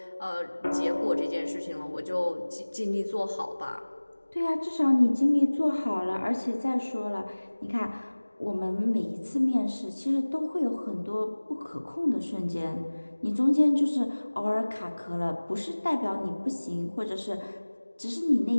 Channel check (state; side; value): inverted; both; correlation -1.00